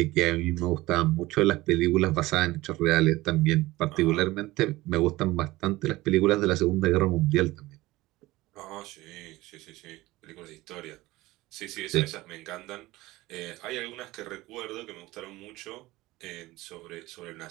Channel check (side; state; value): left; quieter; 18.9 dB